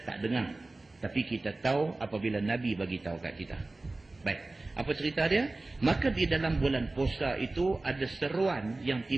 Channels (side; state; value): left; quieter; 3.1 dB